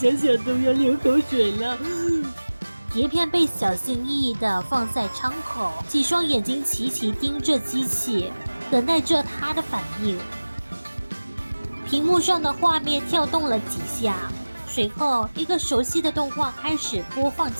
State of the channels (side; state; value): both; inverted; correlation -1.00